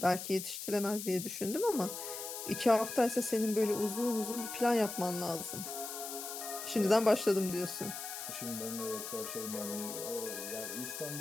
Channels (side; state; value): left; noise; hiss, 7 dB below the sound